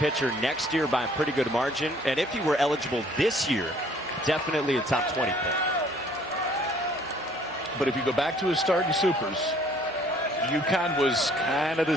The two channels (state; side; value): normal; both; correlation 0.58